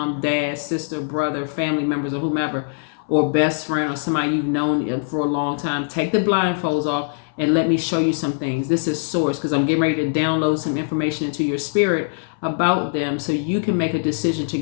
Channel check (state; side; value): silent; right; 64 dB below the other